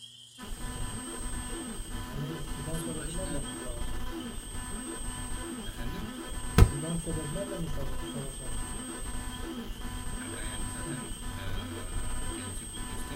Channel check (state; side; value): identical; both; correlation 1.00